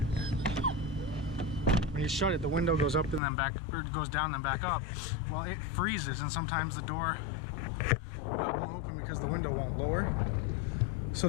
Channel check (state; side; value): drops out; right; at 3.2 s